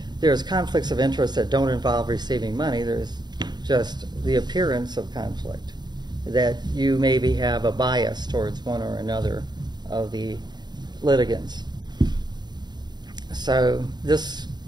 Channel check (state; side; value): late; left; 0.21 ms